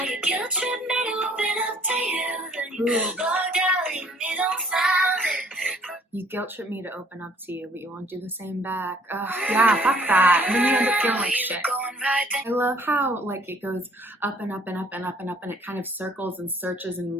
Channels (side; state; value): both; normal; correlation 0.58